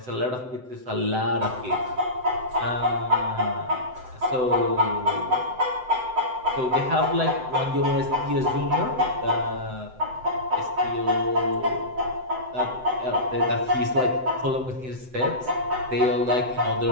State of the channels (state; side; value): late; left; 7.9 ms